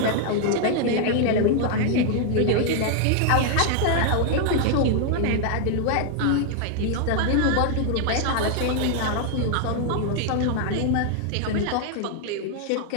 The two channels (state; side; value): different; both; correlation 0.00